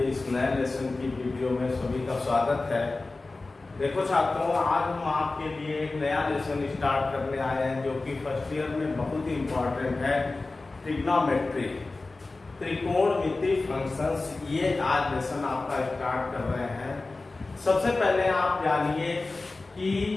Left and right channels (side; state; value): right; quieter; 3.4 dB